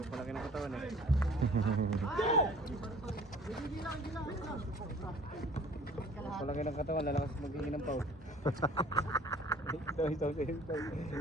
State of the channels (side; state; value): both; normal; correlation 0.50